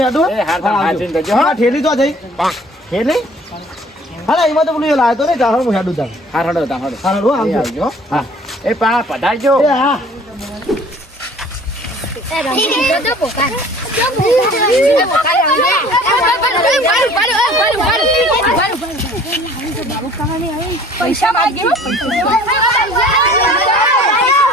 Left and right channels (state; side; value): normal; both; correlation 0.51